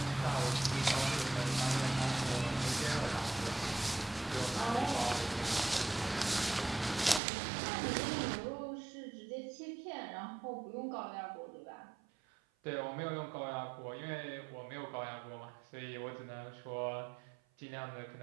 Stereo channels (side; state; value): left; drops out; at 7.2 s